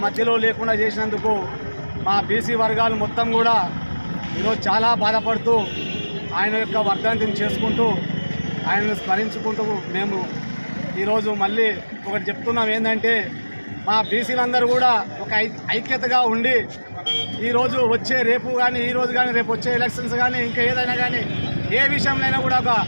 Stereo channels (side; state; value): both; inverted; correlation -1.00